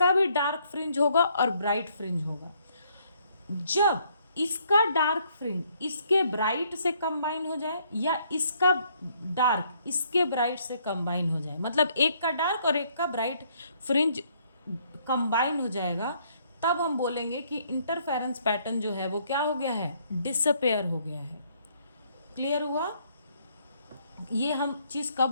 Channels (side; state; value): both; inverted; correlation -0.68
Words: भी डार्क फ्रिंज होगा और ब्राइट फ्रिंज होगा। जब इसका डार्क फ्रिंज इसके ब्राइट से कंबाइन हो जाए या इसका डार्क इसके ब्राइट से कंबाइन हो जाए, मतलब एक का डार्क और एक का ब्राइट फ्रिंज कंबाइन हो जाएगा, तब हम बोलेंगे कि इंटरफेरेंस पैटर्न जो है वो क्या हो गया है? डिसअपेयर हो गया है। क्लियर हुआ? ये हम चीज